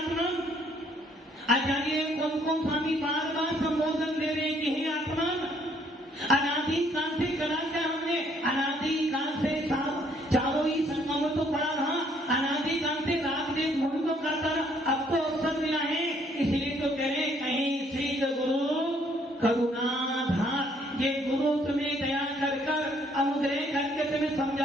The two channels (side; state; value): both; normal; correlation 0.65